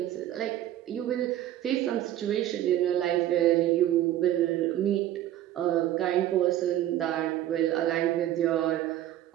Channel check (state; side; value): quieter; left; 12.9 dB